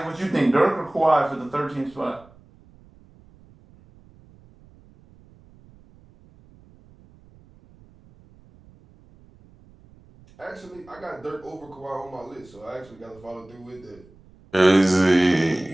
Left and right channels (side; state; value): right; noise; rumble, 26 dB below the sound